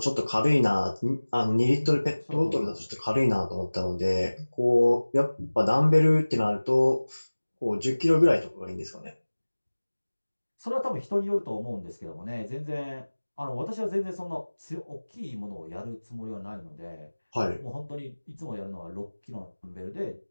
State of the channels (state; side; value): inverted; both; correlation -1.00